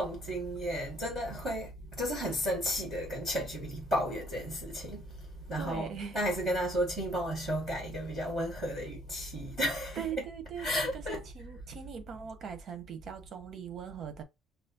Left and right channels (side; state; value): both; normal; correlation 0.63